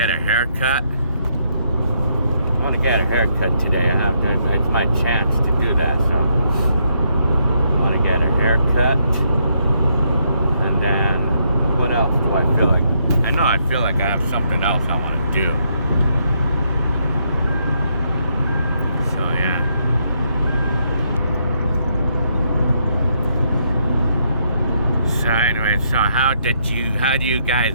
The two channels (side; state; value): both; inverted; correlation -0.76